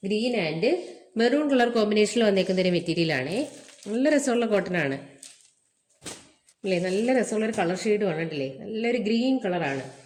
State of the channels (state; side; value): identical; both; correlation 1.00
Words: ഗ്രീൻ ആൻഡ് മെറൂൺ കളർ കോമ്പിനേഷനിൽ വന്നേക്കുന്ന ഒരു മെറ്റീരിയലാണ്. നല്ല രസമുള്ള കോട്ടൺ ആണ് അല്ലേ, നല്ല രസമുള്ളൊരു കളർ ഷെയ്ഡുമാണ് അല്ലേ, നല്ലൊരു ഗ്രീൻ കളറാണ്.